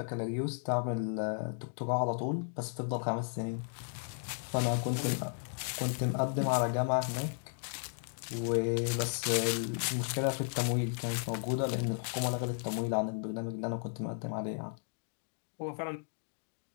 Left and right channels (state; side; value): silent; right; digital silence